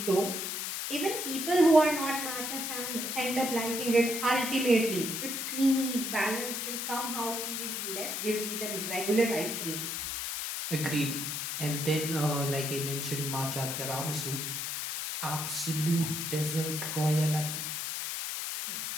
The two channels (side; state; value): left; noise; hiss, 3 dB below the sound